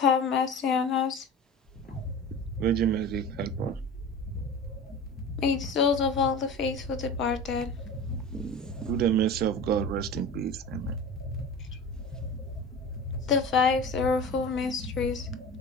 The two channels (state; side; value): normal; both; correlation 0.33